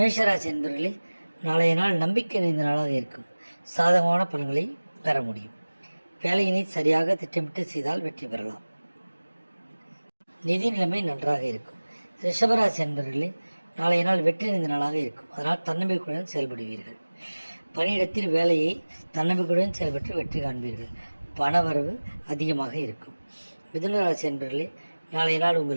என்பர்களே, நாளைய நாள் நம்பிக்கை நிறைந்த நாளாக இருக்கும். சாதகமான பலன்களை பெற முடியும். வேலையினை சரியாக திட்டமிட்டு செய்தால் வெற்றி பெறலாம். நிதி நிலைமை நன்றாக இருக்கும். ரிஷபராசி என்பர்களே, நாளைய நாள் வெற்றி நிறைந்த நாளாக இருக்கும். அதனால் தன்னம்பிக்கையுடன் செயல்படுவீர்கள். பணியிடத்தில் வேலையை தன்னம்பிக்கையுடன் செயல்பட்டு வெற்றி காண்பீர்கள். பணவரவு அதிகமாக இருக்கும். மிதுன ராசி என்பர்களே, நாளைய நாள்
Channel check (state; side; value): inverted; both; correlation -1.00